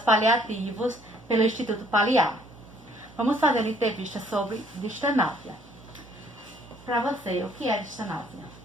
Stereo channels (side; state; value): right; noise; hum, 23 dB below the sound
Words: paliativos pelo Instituto Paliar. Vamos fazer uma entrevista sobre distanásia. Para você, o que é distanásia?